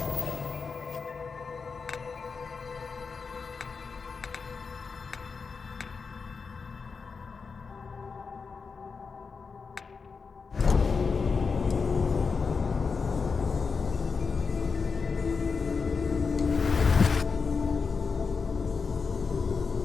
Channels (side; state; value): right; quieter; 5.1 dB